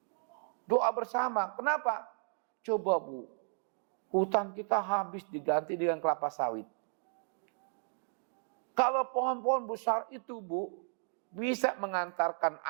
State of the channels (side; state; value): left; silent; 55 dB below the other